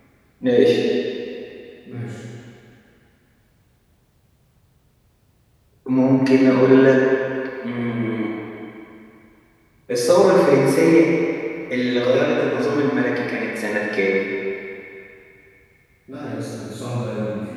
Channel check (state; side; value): identical; both; correlation 1.00